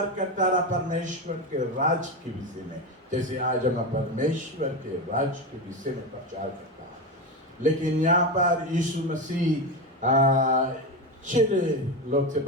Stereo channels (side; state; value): both; normal; correlation 0.17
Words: करता रहा परमेश्वर के राज के विषय में, जैसे आज हम परमेश्वर के राज के विषय में प्रचार करता है। लेकिन यहाँ पर यीशु मसीह चिड़े लोग से